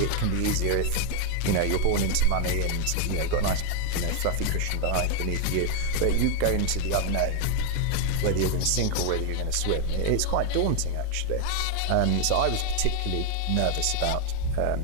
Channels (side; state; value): both; different; correlation 0.00